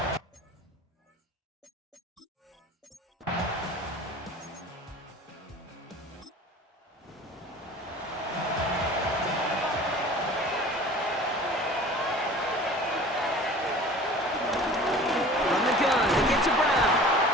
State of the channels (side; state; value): both; normal; correlation 0.43